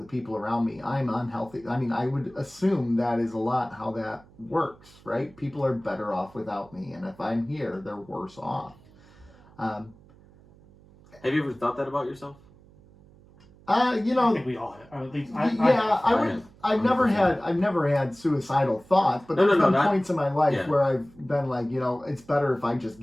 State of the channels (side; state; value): right; noise; hum, 26 dB below the sound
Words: people around me. I'm unhealthy. I mean, I would assume that is a lot how that works, right? People are better off without me, and if I'm here, they're worse off. Have you ever thought that about yourself? I think we all have. At least I've never had suicidal thoughts, but there's been points in my life where I've been like, it's better if I just